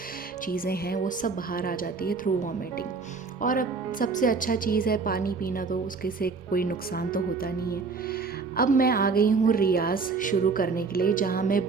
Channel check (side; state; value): left; quieter; 4.6 dB